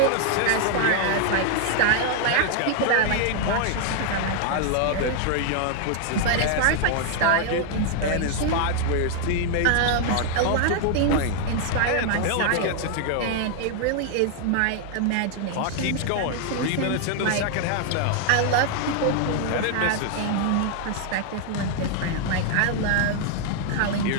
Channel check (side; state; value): both; different; correlation 0.00